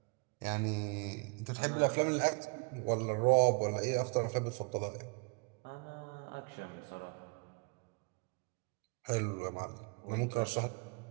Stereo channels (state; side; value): quieter; left; 32.1 dB